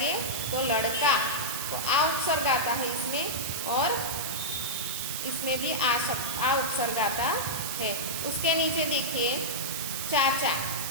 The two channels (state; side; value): noise; right; hiss, 3 dB below the sound